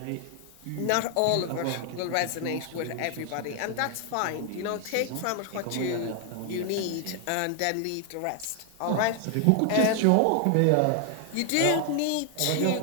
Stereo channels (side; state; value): both; different; correlation 0.00